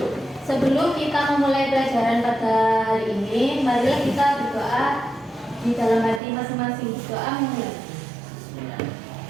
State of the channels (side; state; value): left; drops out; at 6.2 s